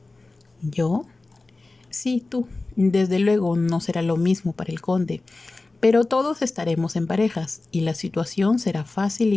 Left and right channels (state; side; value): quieter; right; 3.3 dB